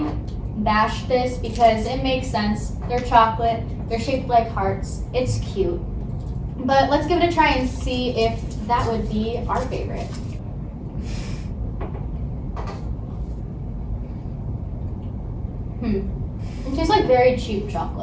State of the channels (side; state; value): both; identical; correlation 1.00